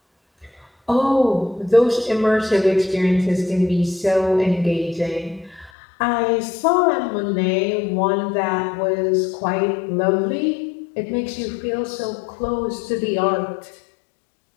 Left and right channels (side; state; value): right; drops out; at 5.7 s